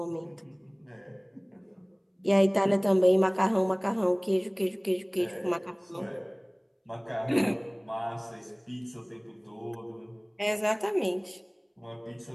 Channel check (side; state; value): both; identical; correlation 1.00